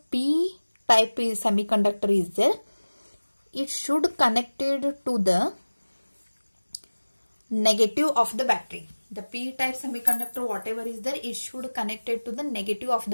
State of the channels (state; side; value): inverted; both; correlation -1.00